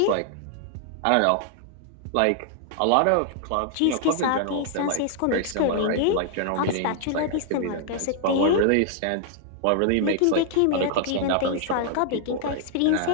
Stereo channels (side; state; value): both; different; correlation 0.00